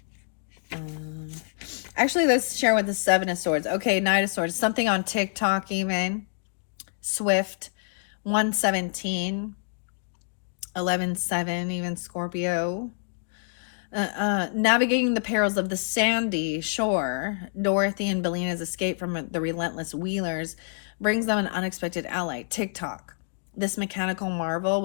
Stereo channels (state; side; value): silent; right; digital silence